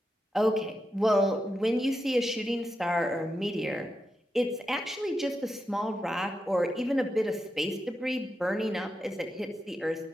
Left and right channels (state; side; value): normal; both; correlation 0.87